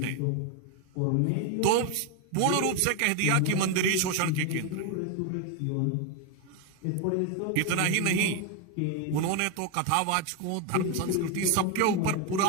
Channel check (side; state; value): both; different; correlation 0.01